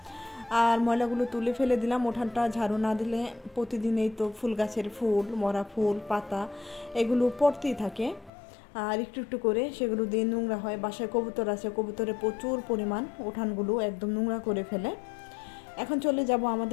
আর ময়লাগুলো তুলে ফেলে দিলাম। উঠানটা ঝাড়ু না দিলে প্রতিদিনই তো ফুল গাছের ফুল, মরা ফুল, পাতা এগুলো পড়তেই থাকে। আর একটু একটু করে সেগুলো দিয়ে নোংরা হয়। বাসায় কবুতর আছে, কবুতরে প্রচুর পরিমাণ উঠানগুলো একদম নোংরা করে ফেলে। এখন চলে যাব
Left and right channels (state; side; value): drops out; right; at 8.3 s